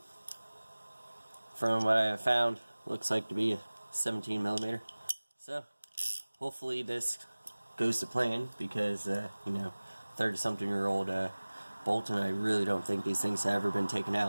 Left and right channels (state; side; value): inverted; both; correlation -1.00